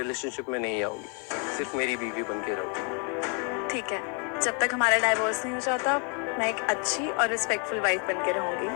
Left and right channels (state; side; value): quieter; right; 37.7 dB